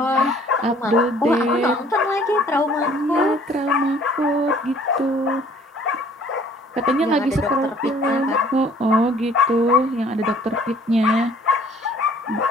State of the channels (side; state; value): both; normal; correlation 0.56